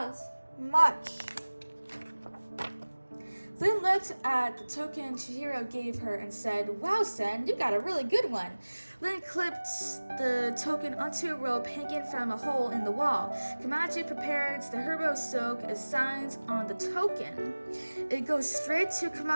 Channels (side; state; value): both; inverted; correlation -1.00